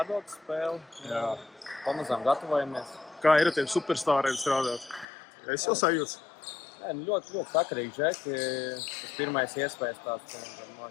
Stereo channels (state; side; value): drops out; right; at 5.1 s